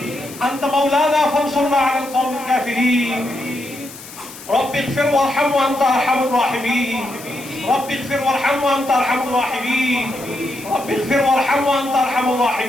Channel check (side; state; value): left; noise; hiss, 16 dB below the sound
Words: أنت مولانا فانصرنا على القوم الكافرين. رب اغفر وارحم وأنت أرحم الراحمين. رب اغفر وارحم وأنت أرحم الراحمين. رب اغفر وارحم وأنت أرحم